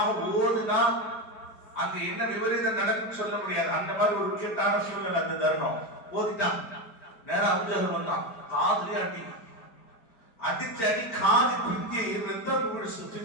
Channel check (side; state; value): right; late; 5.0 ms